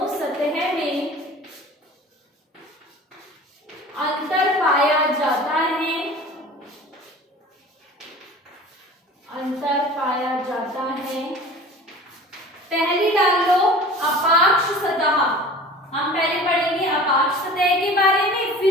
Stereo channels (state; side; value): normal; both; correlation 0.41